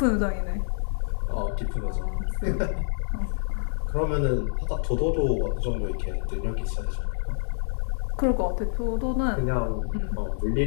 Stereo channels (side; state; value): right; silent; 60 dB below the other